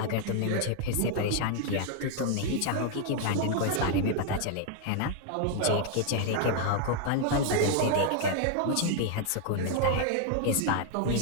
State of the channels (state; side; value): different; both; correlation 0.00